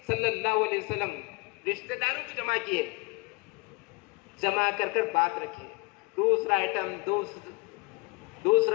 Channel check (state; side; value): quieter; right; 26.8 dB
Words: सल्लल्लाहु अलैहि वसल्लम? रिश्तेदारों को जमा किए, जमा कर कर बात रखी। दूसरा आइटम,